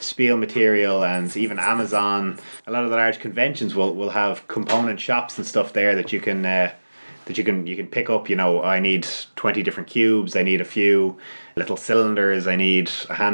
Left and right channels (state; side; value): inverted; both; correlation -1.00